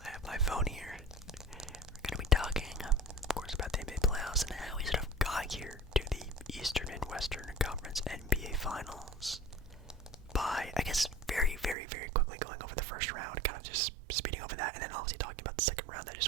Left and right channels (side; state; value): left; drops out; at 11.8 s